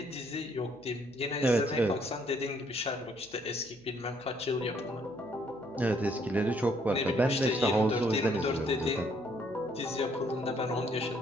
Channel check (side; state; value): right; noise; hum, 26 dB below the sound